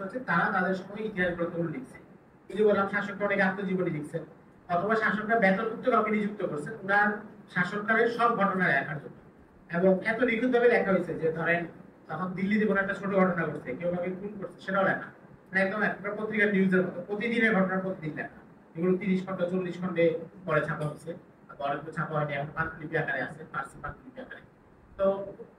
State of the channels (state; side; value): identical; both; correlation 1.00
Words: আছে, তারা তাদের সময় ইতিহাস গ্রন্থগুলো লিখছে। এই যে বললাম শাসকরা অনেক আত্মজীবনী লিখছেন, অথবা শাসকরা বেতনভুক্ত কাউকে নিযুক্ত করছেন ওনার শাসনকালের সব ঘটনা লেখার জন্য। এবং এত নিখুঁতভাবে লেখা হয়েছে যে ধরেন তখন দিল্লিতে কোনো একটা ছোট ঘটনা ঘটছে, কেউ কাউকে খুন করছে, সেটাও লেখা। মানে একদম একটা পত্রিকার নিউজের মতো প্রতিদিনের ঘটনা প্রতিদিন লেখা। এগুলো 30 খন্ড 40 খন্ডে পরে ছাপা হচ্ছে, অনেকগুলো ছাপা হয়নি, এখন পাণ্ডুলিপি আকারে আছে, ফার্সি পাণ্ডুলিপি আকারে। তো